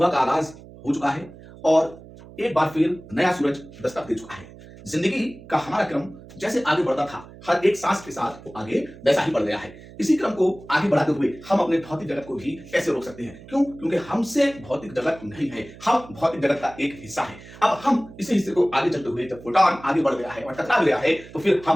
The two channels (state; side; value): noise; right; hum, 19 dB below the sound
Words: का आगाज हो चुका है और एक बार फिर नया सूरज दस्तक दे चुका है। जिंदगी का हमारा क्रम जैसे आगे बढ़ता था, हर एक सांस के साथ वो आगे वैसा ही बढ़ गया है। इसी क्रम को आगे बढ़ाते हुए हम अपने भौतिक जगत को भी कैसे रोक सकते हैं? क्यों? क्योंकि हमसे भौतिक जगत नहीं है, हम भौतिक जगत का एक हिस्सा है। अब हम इसी हिस्से को आगे चलते हुए जब फोटॉन आगे बढ़ गया है और टकरा गया है तो फिर